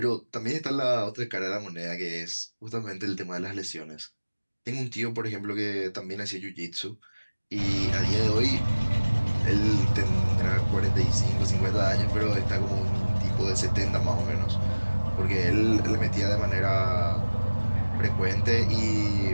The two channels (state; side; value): inverted; both; correlation -1.00